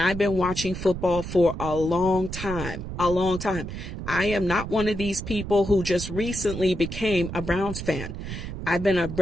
been watching football for a long time. I am not one of these people who just recently became a Browns fan. I've been a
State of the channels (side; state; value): right; noise; rumble, 7 dB below the sound